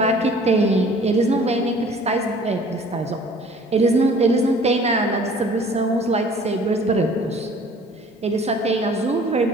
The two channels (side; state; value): both; normal; correlation 0.51